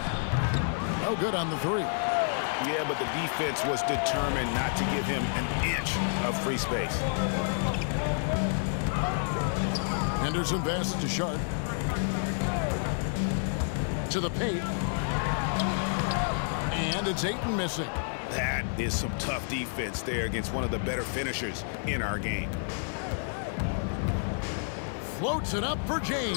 No good on the 3. Yeah, but the defense was determined not to give him an inch of free space. Henderson passes to Sharp. To the paint. And it's Ayton missing. That is some tough defense there against one of the better finishers in our game. Floats it up for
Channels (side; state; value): right; silent; 58 dB below the other